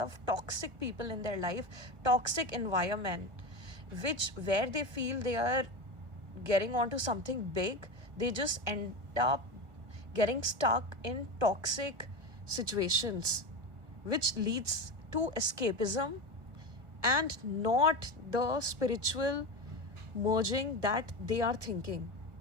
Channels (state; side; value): late; left; 1.4 ms